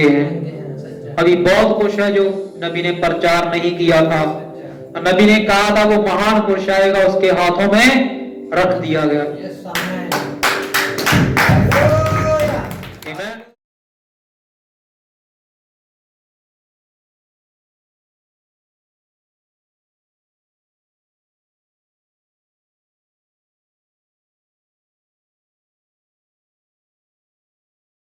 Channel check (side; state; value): both; identical; correlation 1.00